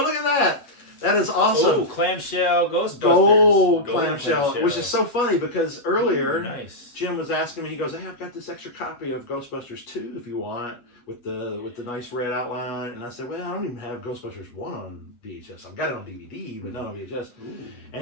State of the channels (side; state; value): right; late; 8.3 ms